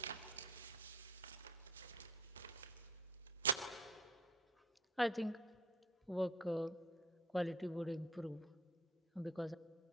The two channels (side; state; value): both; normal; correlation 0.53